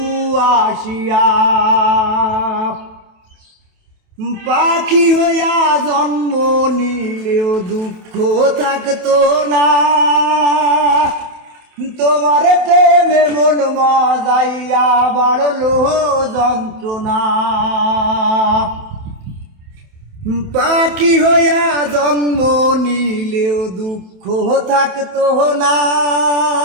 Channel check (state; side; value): late; left; 27 ms